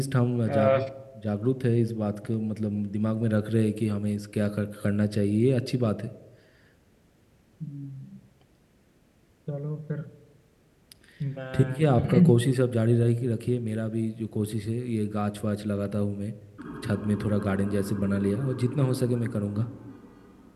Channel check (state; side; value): identical; both; correlation 1.00